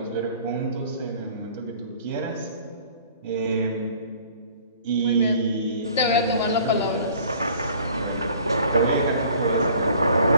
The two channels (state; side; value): inverted; both; correlation -0.52